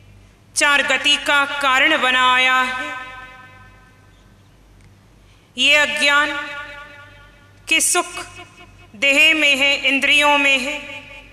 चार गति का कारण बनाया है, ये अज्ञान कि सुख देह में है, इंद्रियों में है,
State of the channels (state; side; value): identical; both; correlation 1.00